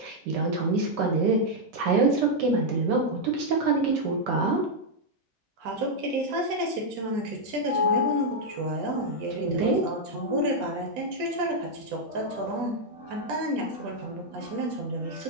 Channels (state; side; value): normal; both; correlation -0.02